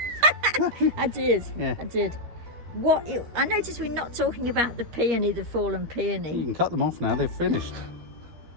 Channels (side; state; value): left; late; 13 ms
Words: I did. Yeah. I did. I noticed we're not talking about the peony, the fallen You peony. can cut them off now. They've finished.